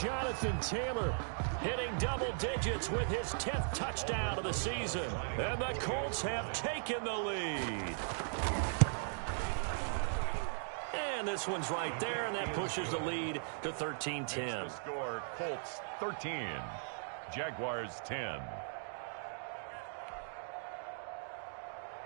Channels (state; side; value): silent; left; digital silence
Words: Jonathan Taylor hitting double digits with his 10th touchdown of the season. And the Colts have taken the lead. And this one's right there, and that pushes the lead to 13-10. Score, Colts 13, Jaguars 10.